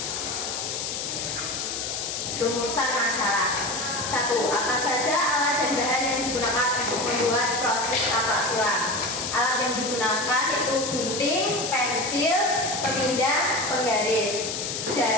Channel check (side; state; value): left; noise; hiss, 3 dB below the sound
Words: Rumusan masalah. 1. Apa saja alat dan bahan yang digunakan untuk membuat produk taplak sulam? Alat yang digunakan itu gunting, pensil, pemindah, penggaris,